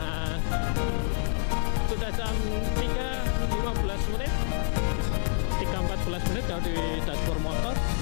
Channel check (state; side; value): silent; right; digital silence